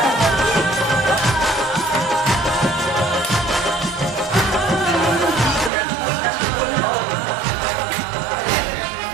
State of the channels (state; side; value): drops out; left; at 5.7 s